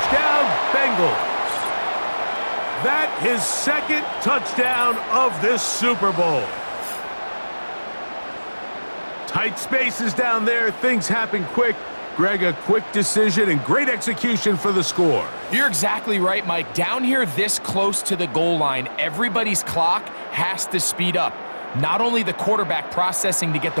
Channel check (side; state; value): both; inverted; correlation -1.00